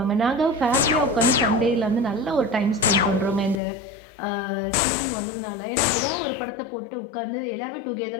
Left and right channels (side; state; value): right; drops out; at 3.6 s